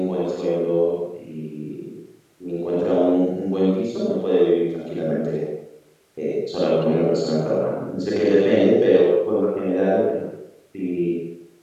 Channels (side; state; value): both; identical; correlation 1.00